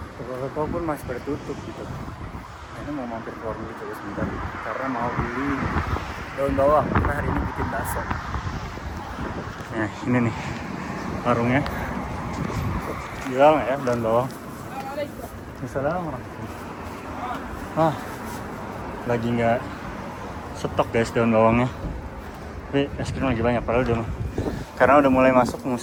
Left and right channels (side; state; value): both; identical; correlation 1.00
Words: Toko-toko pun masih bertutup gitu. Nah, ini mau mampir keluar dulu coba sebentar. Karena mau beli daun bawang. Karena hari ini bikin bakso. Nah, ini nih warungnya. Jual nggak ya daun bawang? Assalamualaikum. Lagi nggak stok guys daun bawangnya. Tapi es krim lagi banyak padahal karena udah mulai masuk